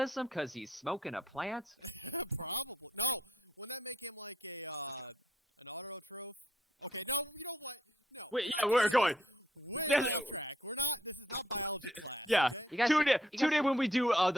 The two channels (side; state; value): both; normal; correlation 0.70